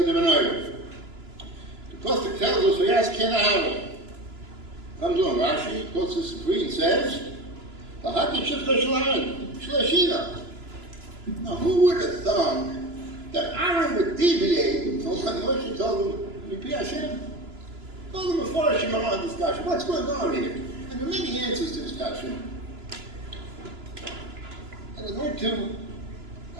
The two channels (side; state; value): left; late; 2.9 ms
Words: the menorah. The Pasuk tells us, "Vayas ken Aaron." Comes on, Rashi quotes this decree and says, "V'hati shifta shel Aaron shlashina." Now, who would have thought that Aaron would deviate from what Moshe told him, "Mipi Hashem"? Told him before Shema discussion. What's going on here? And there are many answers to this question. I